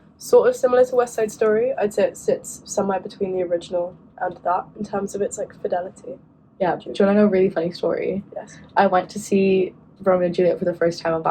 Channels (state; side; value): identical; both; correlation 1.00